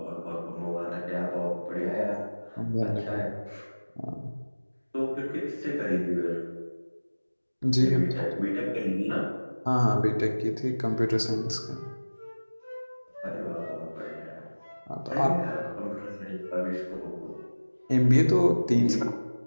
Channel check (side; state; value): both; inverted; correlation -1.00